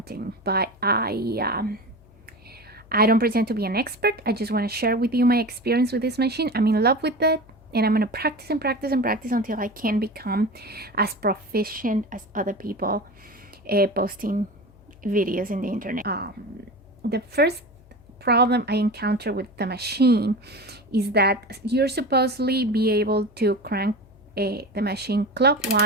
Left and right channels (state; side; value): noise; left; hum, 26 dB below the sound